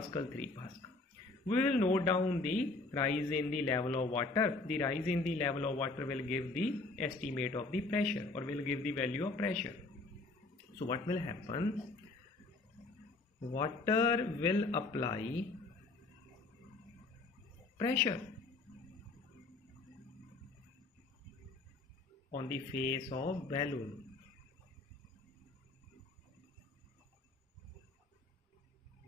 3 Pascal. We will note down the rise in the level of water. The rise in the level of water will give the estimate of the pressure, or will give the value of pressure. So what will happen? Water will apply pressure on the face of balloon.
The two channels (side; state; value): right; quieter; 3.4 dB